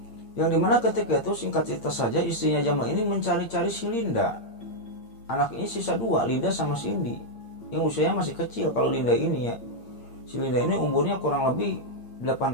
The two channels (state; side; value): late; right; 8.7 ms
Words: yang dimana ketika itu singkat cerita saja istrinya Jamal ini mencari-cari si Linda. Anak ini sisa 2, Linda sama Cindy, yang usianya masih kecil. Kalau Linda ini ya, si Linda ini umurnya kurang lebih